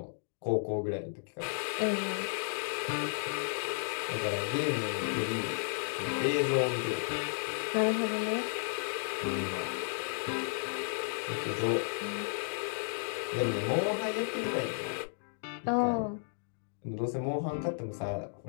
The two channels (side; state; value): right; silent; digital silence